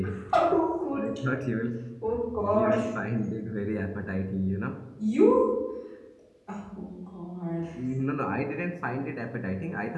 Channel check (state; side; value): identical; both; correlation 1.00